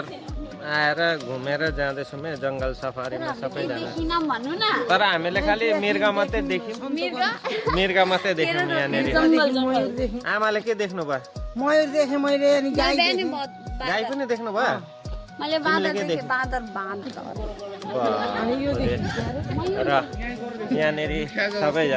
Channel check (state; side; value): identical; both; correlation 1.00